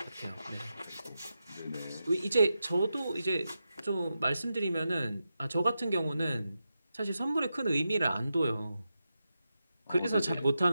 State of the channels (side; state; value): both; inverted; correlation -0.89